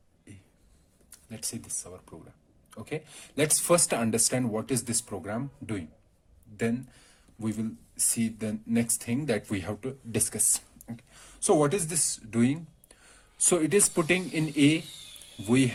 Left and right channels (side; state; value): both; identical; correlation 1.00